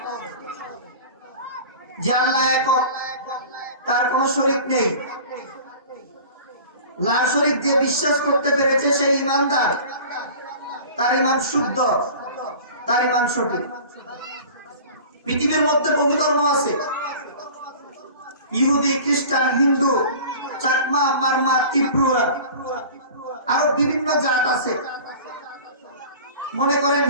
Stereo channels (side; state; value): both; inverted; correlation -0.40